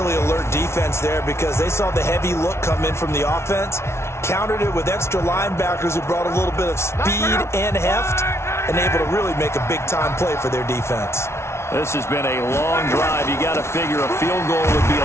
alert defense there because they saw the heavy look come in from the offense, countered it with extra linebackers who brought a little bit of speed and heft, and able to really make a big-time play for their defense. This has been a long drive. You got to figure a field goal would be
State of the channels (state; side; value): late; right; 0.13 ms